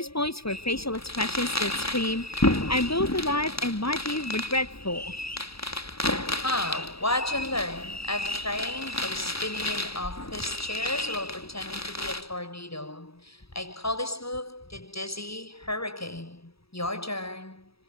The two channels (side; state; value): right; late; 0.77 ms